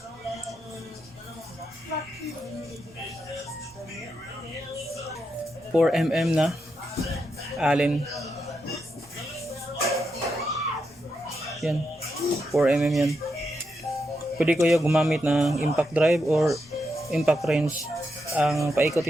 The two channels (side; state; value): both; normal; correlation 0.84